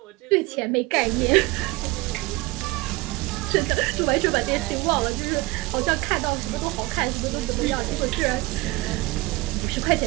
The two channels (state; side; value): quieter; left; 21.4 dB